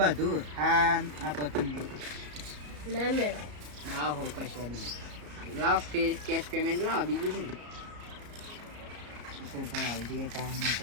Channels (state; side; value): late; left; 34 ms